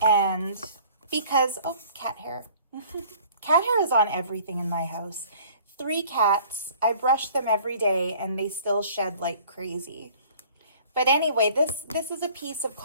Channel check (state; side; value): inverted; both; correlation -0.51